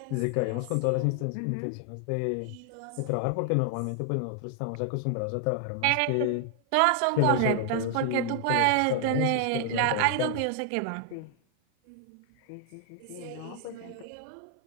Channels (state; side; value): different; both; correlation 0.00